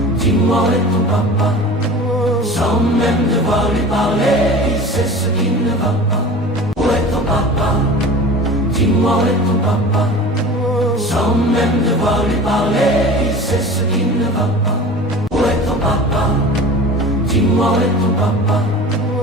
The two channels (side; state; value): both; normal; correlation 0.38